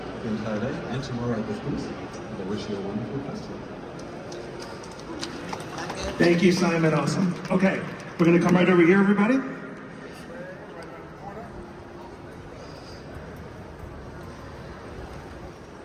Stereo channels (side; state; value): both; identical; correlation 1.00